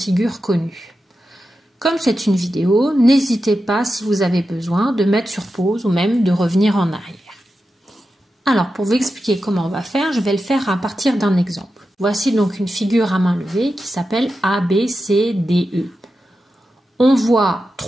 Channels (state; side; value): normal; both; correlation 0.91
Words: connues. Comme c'est une vidéo, n'hésitez pas si vous avez besoin de mettre sur pause ou même de revenir en arrière. Alors pour vous expliquer comment on va faire, je vais le faire à partir d'un exemple. Voici donc une figure à main levée qui s'appelle ABCDE. On voit